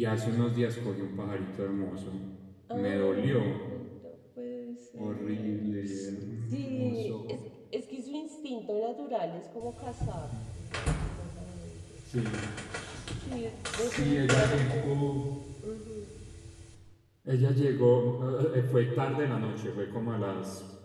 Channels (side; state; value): both; identical; correlation 1.00